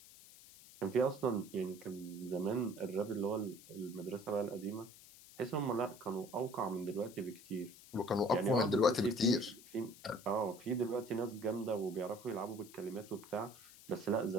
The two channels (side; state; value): left; noise; hiss, 20 dB below the sound